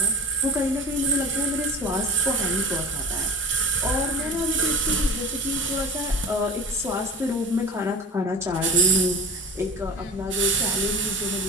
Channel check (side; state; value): both; normal; correlation 0.32